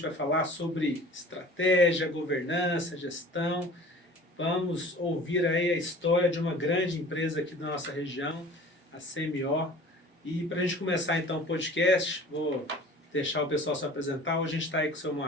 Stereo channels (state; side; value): normal; both; correlation 0.44